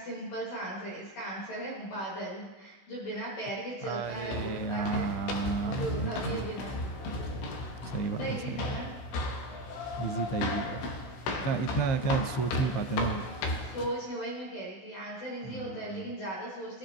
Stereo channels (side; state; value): right; late; 16 ms